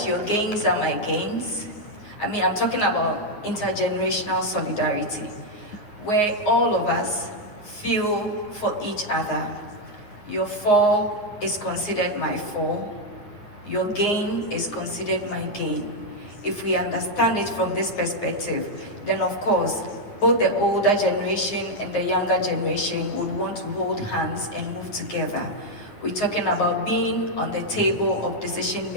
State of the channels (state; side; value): late; right; 9.6 ms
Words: your gains are my gains. I mean, I'm talking about intergenerational solidarity, where all of us feel for each other. Your fall is considered my fall. Your gain is considered my gain. If we understand it from this perspective, then of course, both the older generation and the younger generation would want to hold hands and move together. We're talking about being on the table of decision